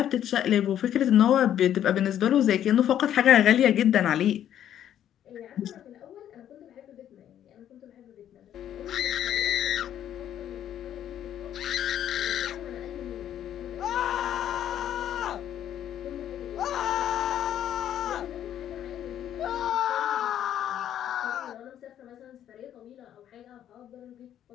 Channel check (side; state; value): right; quieter; 10.7 dB